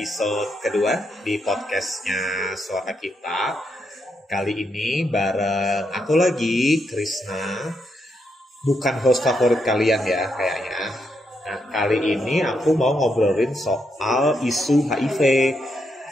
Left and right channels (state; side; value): normal; both; correlation 0.80